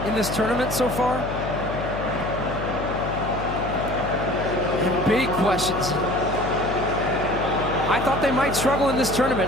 in this tournament so far. And big questions. I thought they might struggle in this tournament.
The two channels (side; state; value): left; noise; hum, 6 dB below the sound